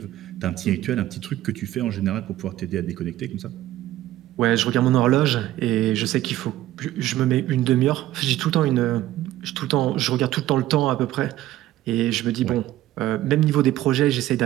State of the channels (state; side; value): quieter; left; 14.5 dB